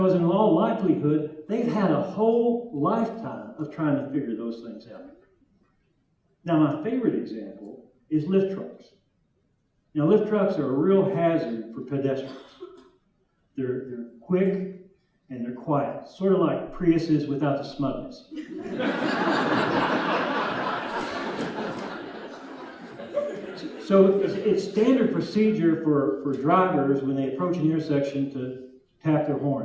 in all likelihood, they've had a whole lifetime of trying to figure those things out. Now, my favorite example is lift trucks. Now, lift trucks are a real hazard for pedestrians. They're quick and they're quiet, sort of like Priuses without the smugness. So it's standard procedure for drivers when they approach an intersection to tap their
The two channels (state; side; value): identical; both; correlation 1.00